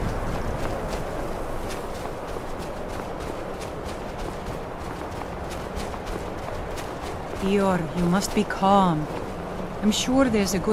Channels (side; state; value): both; identical; correlation 1.00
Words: Dior, you must be calm. I'm sure there's a